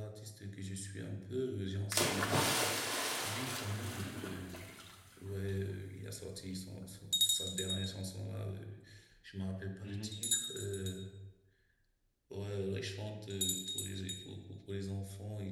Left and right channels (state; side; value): identical; both; correlation 1.00